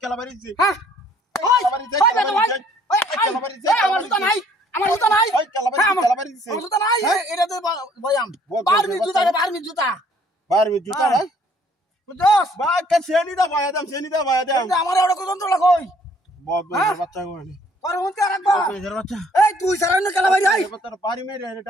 কেলা বাড়িছে হ্যাঁ ওই কেলা বাড়িছে আমার জুতা নাই ওই কেলা বাড়িছে আমার জুতা নাই এটা তো বয়াম বারমি জুতা না বুঝছস বা কে সেনি দা বয়া দাম আমার এড়ো কত লাগই বহুত বাচ্চা কইনি আর হুনতে রাখবা বাচ্চা এই তুই সারা না কেলা বাড়ি আই তোর বাড়ি মেরে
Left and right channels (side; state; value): both; normal; correlation 0.61